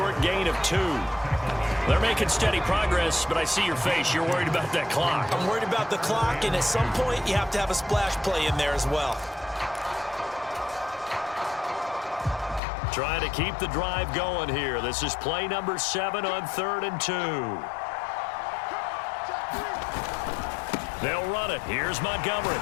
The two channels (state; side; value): drops out; right; at 12.6 s